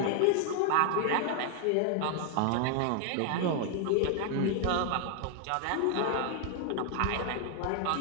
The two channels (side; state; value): both; different; correlation 0.00